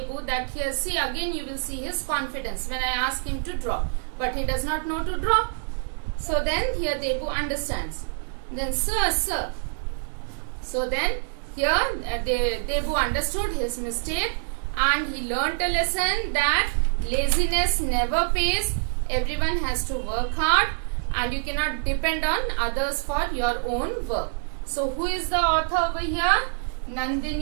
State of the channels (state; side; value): silent; left; digital silence